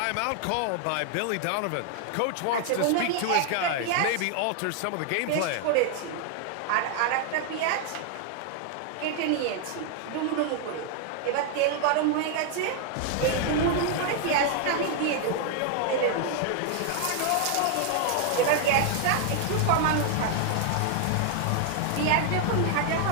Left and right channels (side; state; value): both; different; correlation 0.00